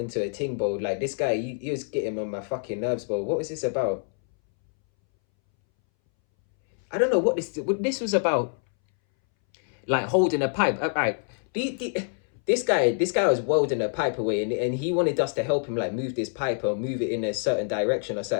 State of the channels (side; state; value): right; silent; 61 dB below the other